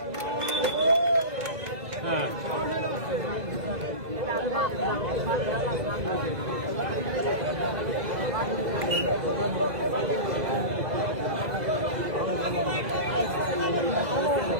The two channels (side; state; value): left; late; 2.0 ms